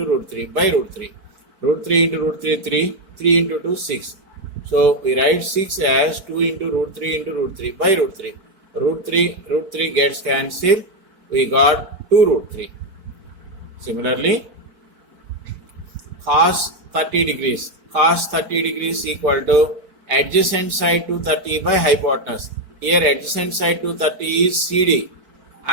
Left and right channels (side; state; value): left; late; 4.5 ms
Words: root 3 by root 3. Root 3 into root 3, 3. 3 into 2, 6. So we write 6 as 2 into root 3 into root 3 by root 3. Root 3 gets cancelled. We got 2 root 3. Similarly, cos 30 degrees. Cos 30 degrees equal to adjacent side to 30 by hypotenuse. Here adjacent side to 30 is CD